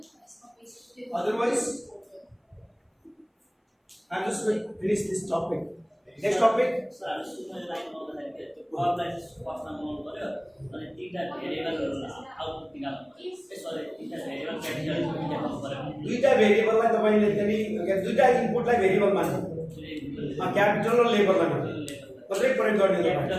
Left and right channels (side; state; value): both; identical; correlation 1.00